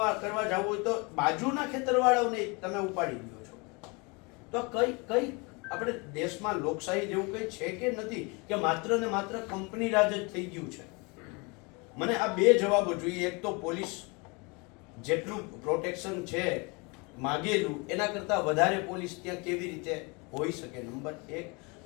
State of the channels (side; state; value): right; quieter; 29.2 dB